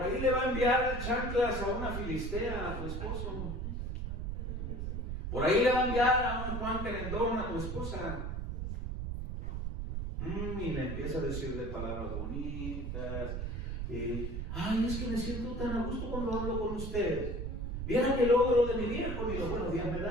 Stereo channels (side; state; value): right; noise; rumble, 4 dB below the sound